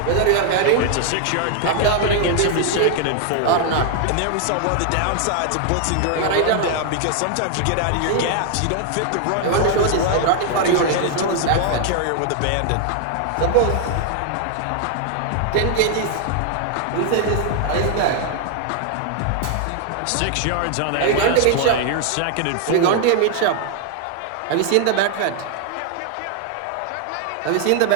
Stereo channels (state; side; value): different; both; correlation 0.00